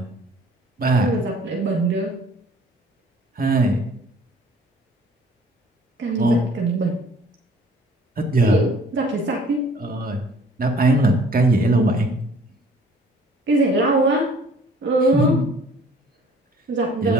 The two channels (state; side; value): normal; both; correlation 0.54